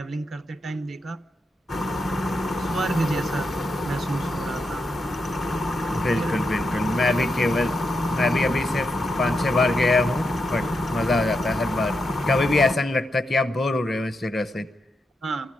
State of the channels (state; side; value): normal; both; correlation 0.85